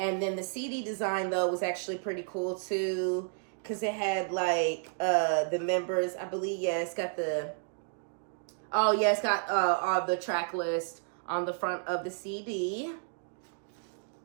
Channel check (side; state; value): left; silent; digital silence